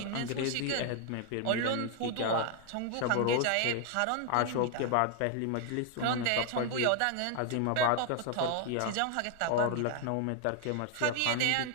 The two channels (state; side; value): different; both; correlation 0.00